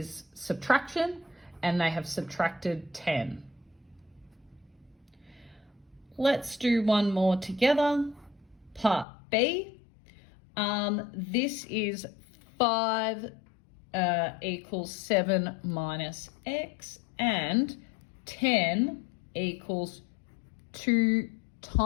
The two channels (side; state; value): right; drops out; at 9.1 s